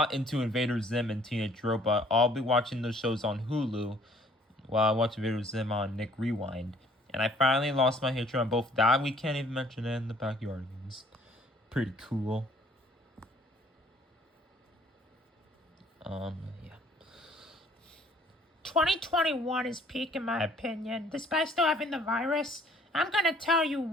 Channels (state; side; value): normal; both; correlation 0.58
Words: into Invader Zim and Teenage Robot. I'll be watching those shows on Hulu while I watch Invader Zim on Nick Rewind. And I finally lost my hatred on both that. We can't even mention it in the Backyardigans. Pretty cool. Yeah. 2021 is peak in my opinion. Despite still having the virus, I'm gonna tell you